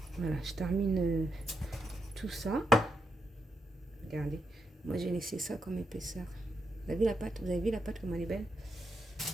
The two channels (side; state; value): both; normal; correlation 0.83